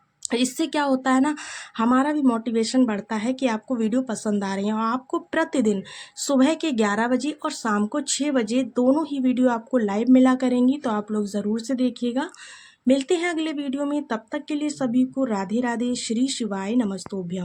इससे क्या होता है ना, हमारा भी मोटिवेशन बढ़ता है कि आपको वीडियो पसंद आ रही है। और आपको प्रतिदिन सुबह के 11 बजे और शाम को 6 बजे दोनों ही वीडियो आपको लाइव मिला करेंगी, तो आप लोग ज़रूर से देखिएगा। मिलते हैं अगले वीडियो में, तब तक के लिए सभी को राधे राधे, श्री शिवाय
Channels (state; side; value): identical; both; correlation 1.00